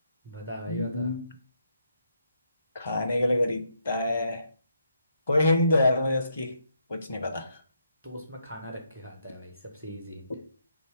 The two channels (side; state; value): both; inverted; correlation -0.77